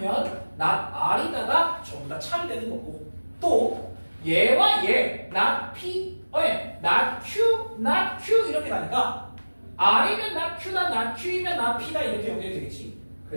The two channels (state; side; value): inverted; both; correlation -1.00